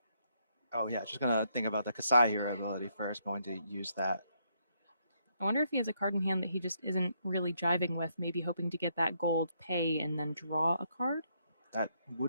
gonna think about the Kasai hero ability first. Going to use that. I wonder if he has a card in hand that he just isn't really jiving with, maybe hoping to get that gold pay and then draw a card. That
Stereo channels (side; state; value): both; inverted; correlation -0.74